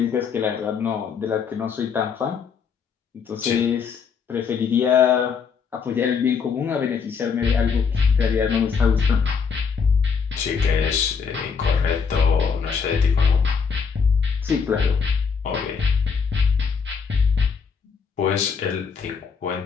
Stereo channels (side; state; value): right; quieter; 6.0 dB